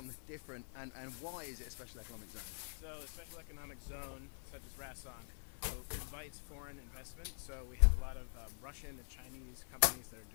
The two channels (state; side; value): silent; right; digital silence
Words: different, and why is it a special economic zone? So a special economic zone, such as Rason, invites foreign investment. So we have a lot of Russian and Chinese companies that are